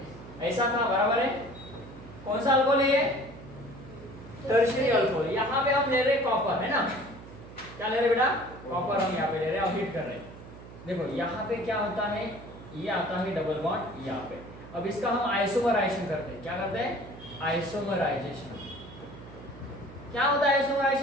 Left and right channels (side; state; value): right; noise; hum, 16 dB below the sound